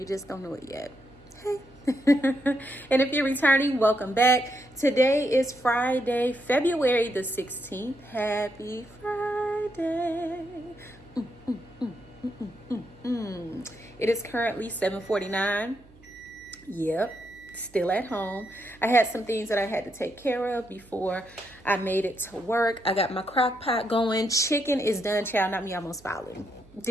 just don't know it yet. Hey. And if you're returning, welcome back. Today is Friday, February the 16th. Happy Friday. It is currently 7:49. Yep. Still at home. I had some things that I had to take care of before I made it to work. I got my crock pot going. Chicken is done, child. Not me, I'm almost falling.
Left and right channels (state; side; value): noise; right; hum, 25 dB below the sound